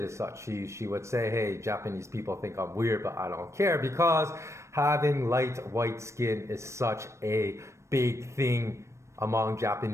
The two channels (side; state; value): left; late; 0.14 ms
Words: as such. She would say, hey, Japanese people think I'm weird, but I don't care because having light white skin is such a big thing among